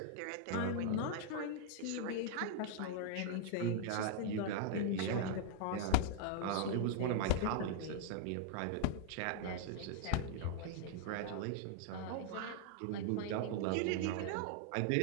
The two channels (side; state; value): both; different; correlation 0.00